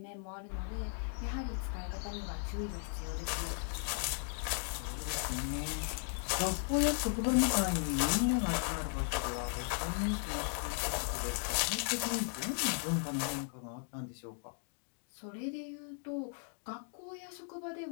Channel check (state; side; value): silent; right; 53 dB below the other